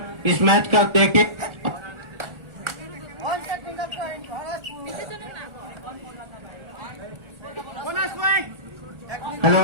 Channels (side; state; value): left; late; 1.4 ms